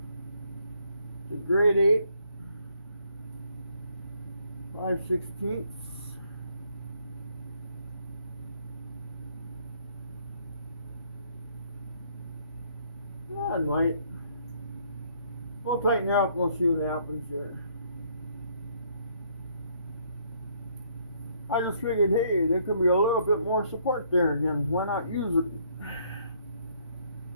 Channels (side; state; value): both; inverted; correlation -0.67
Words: It's a grade 8, 5/16. Yeah, it might. We'll tighten her up, we'll see what happens here. I just figured, hey, there could be a little bit more support there again. Why not use it?